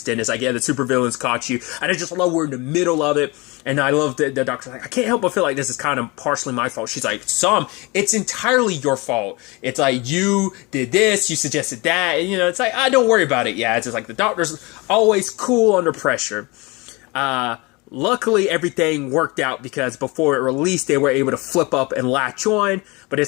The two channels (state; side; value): quieter; right; 25.5 dB